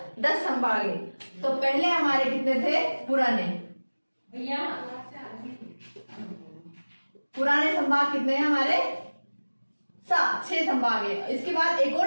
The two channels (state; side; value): inverted; both; correlation -1.00